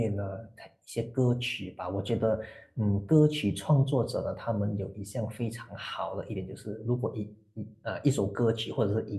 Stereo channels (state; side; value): identical; both; correlation 1.00